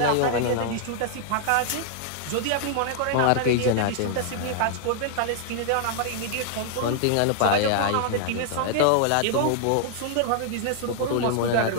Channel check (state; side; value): different; both; correlation -0.01